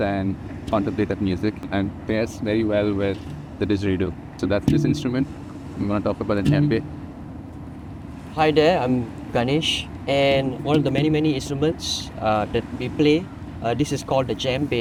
and contemplative music, and pairs very well with the didgeridoo. So that's this instrument. I'm going to talk about the djembe. Hi there, I'm Kanesh, and one of the many instruments that we play, this is called the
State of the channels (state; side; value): identical; both; correlation 1.00